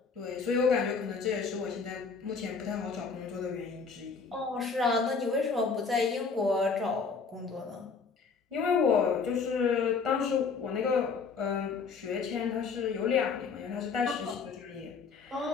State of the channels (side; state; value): right; quieter; 5.2 dB